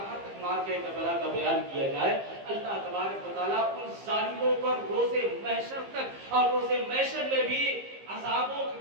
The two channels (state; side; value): late; left; 15 ms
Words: تک مار کے کربلا کا بیان کیا جائے۔ اللہ تبارک و تعالیٰ ان ظالموں پر روز محشر تک اور روز محشر میں بھی عذابوں